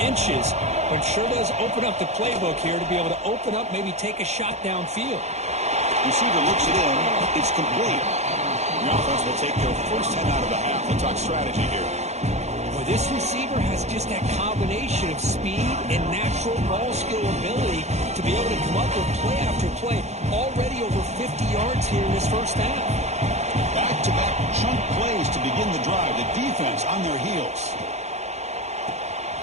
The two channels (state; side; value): late; left; 0.32 ms